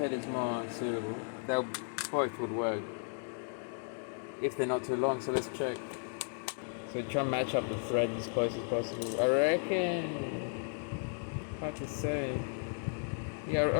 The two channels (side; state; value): right; silent; 55 dB below the other